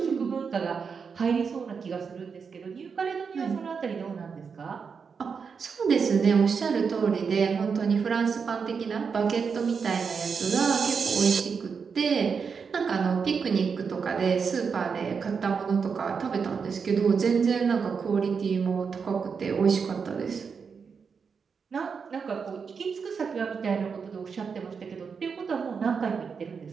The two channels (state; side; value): quieter; left; 5.8 dB